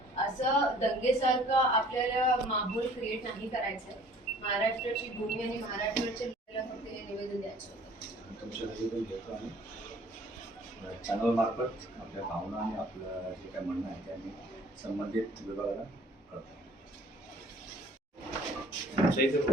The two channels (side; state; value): both; normal; correlation 0.53